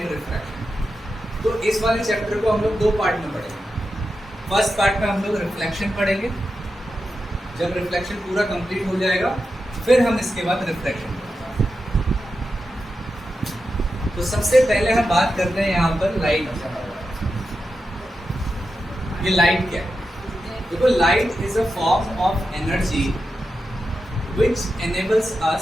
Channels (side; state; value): both; normal; correlation 0.89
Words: रिफ्रैक्शन। तो इस वाले चैप्टर को हम लोग दो पार्ट में पढ़ेंगे। फर्स्ट पार्ट में हम लोग रिफ्लेक्शन पढ़ेंगे। जब रिफ्लेक्शन पूरा कंप्लीट हो जाएगा फिर हम इसके बाद रिफ्रैक्शन पढ़ेंगे। तो सबसे पहले हम बात करते हैं यहाँ पर लाइट। ये लाइट क्या है? देखो, light is a form of energy which enables